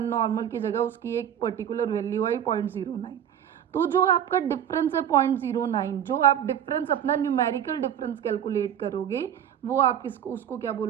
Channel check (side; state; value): left; quieter; 9.6 dB